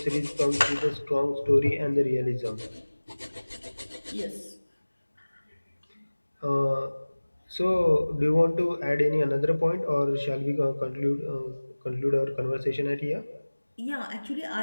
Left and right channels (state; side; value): inverted; both; correlation -1.00